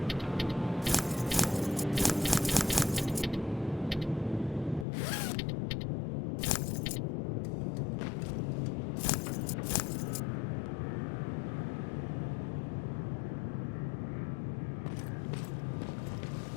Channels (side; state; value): right; drops out; at 4.9 s